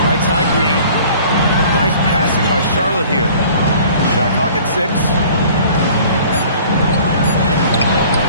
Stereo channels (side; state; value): both; inverted; correlation -0.50